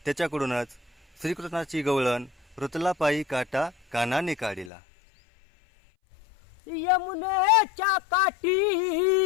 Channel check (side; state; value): right; drops out; at 4.7 s